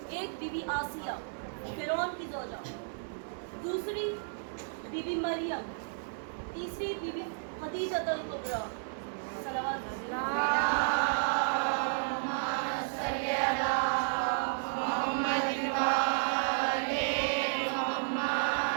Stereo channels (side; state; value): left; silent; digital silence